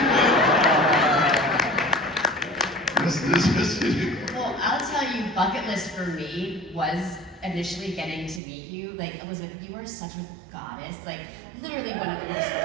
Well, I'll tell you, bucket list for me was initially getting to meet you. Like, Elizabeth, you are such a goddess. Like, literally one of the most.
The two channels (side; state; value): left; drops out; at 8.4 s